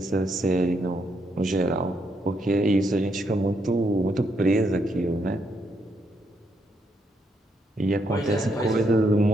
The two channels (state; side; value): normal; both; correlation 0.77